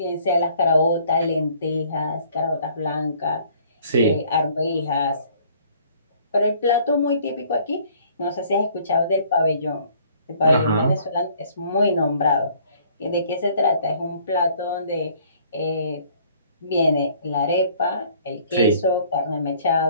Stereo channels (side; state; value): both; inverted; correlation -0.58